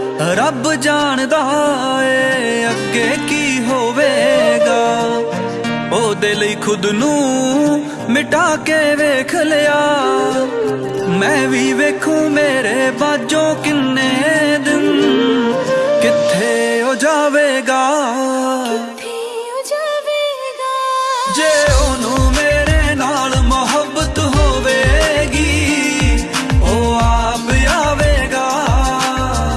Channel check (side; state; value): both; identical; correlation 1.00